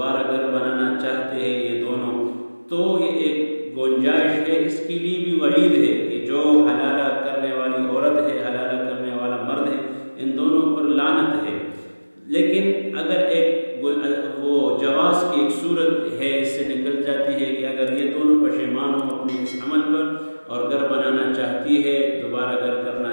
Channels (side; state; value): both; inverted; correlation -1.00